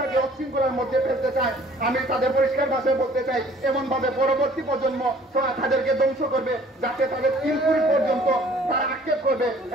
অশৃঙ্খলার মধ্যে ফেলতে চায় আমি তাদের পরিষ্কার ভাষায় বলতে চাই এমন ভাবে পরবর্তী প্রজন্ম তাদেরকে ধ্বংস করবে যাতে তাদের 3 পুরী পর্যন্ত তারা আক্ষেপ করবে।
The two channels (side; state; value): both; normal; correlation 0.54